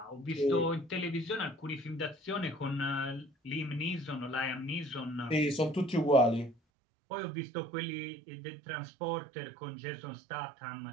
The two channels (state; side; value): drops out; left; at 6.6 s